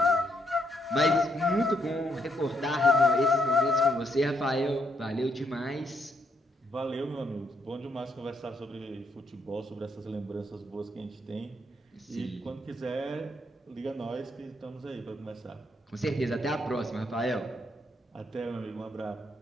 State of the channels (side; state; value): both; normal; correlation 0.75